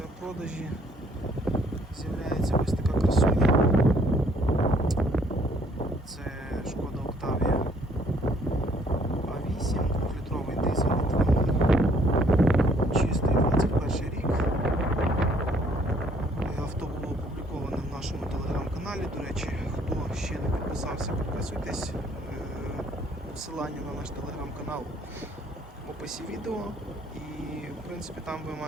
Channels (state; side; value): normal; both; correlation 0.63